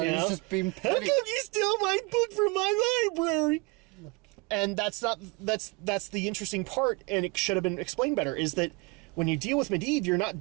he was just being petty. How come you steal my book from my library? And that's the interesting part, and it should have been explained better, is that when you deal with Medivh, you're not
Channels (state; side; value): quieter; left; 27.3 dB